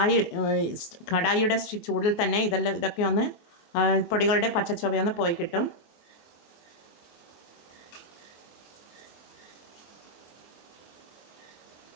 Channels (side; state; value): right; late; 23 ms